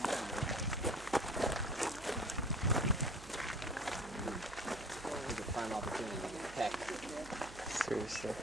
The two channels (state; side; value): noise; right; hum, 16 dB below the sound